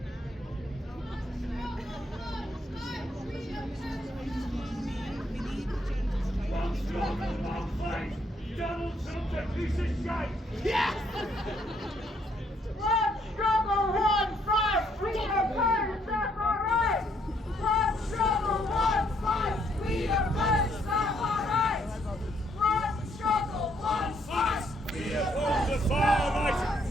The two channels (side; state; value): both; normal; correlation 0.71